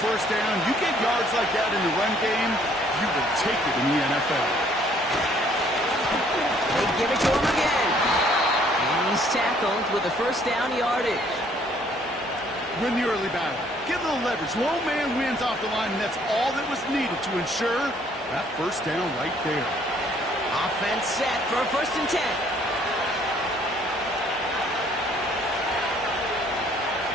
first down. You get yards like that in the run game, you will take it in the NFL. They give it to him again. And he's tackled with a first down yardage. Win the early battle. Get a little leverage. Low man wins off the line, and that's all that was needed to ensure that first down right there. Offense set for a first and 10.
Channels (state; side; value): normal; both; correlation 0.62